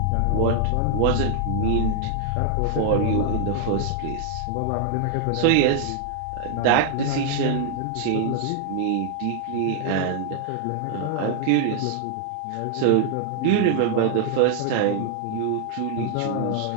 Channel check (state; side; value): different; both; correlation 0.00